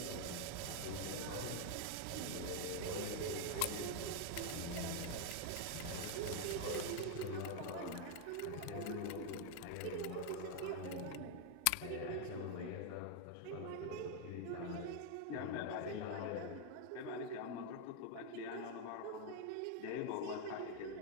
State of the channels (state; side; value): different; both; correlation 0.00